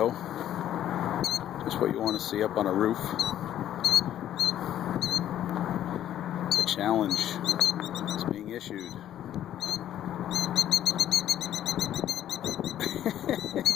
Just what you want to see up on a roof. The challenge is being issued.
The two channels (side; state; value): right; quieter; 11.5 dB